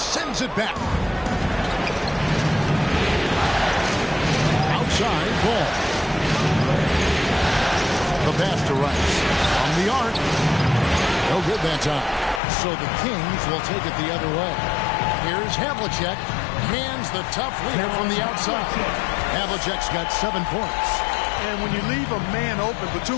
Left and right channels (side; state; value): right; drops out; at 12.4 s